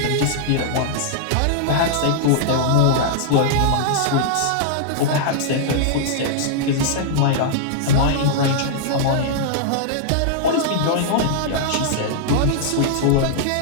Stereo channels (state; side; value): different; both; correlation -0.01